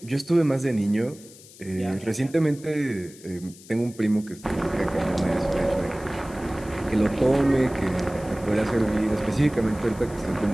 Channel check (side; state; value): left; noise; hiss, 21 dB below the sound